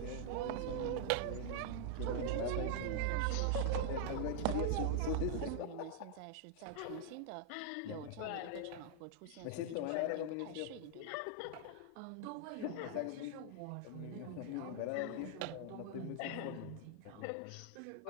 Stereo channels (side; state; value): both; different; correlation 0.00